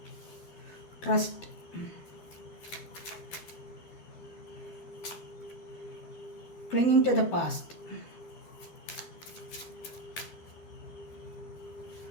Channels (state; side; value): late; right; 12 ms